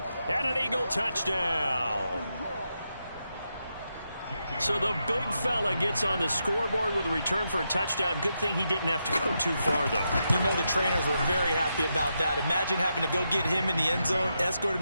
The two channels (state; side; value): inverted; both; correlation -0.84